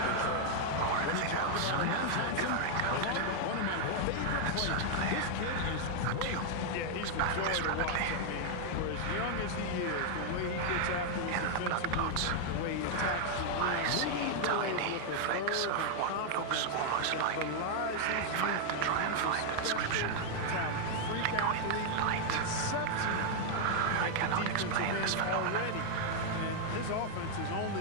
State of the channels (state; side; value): different; both; correlation 0.00